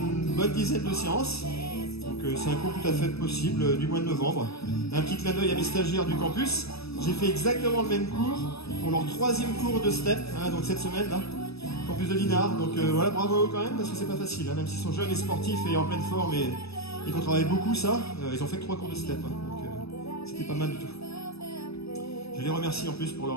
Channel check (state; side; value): late; right; 0.78 ms